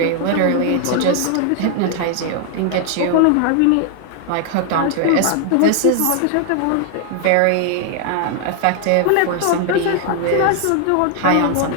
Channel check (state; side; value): different; both; correlation 0.00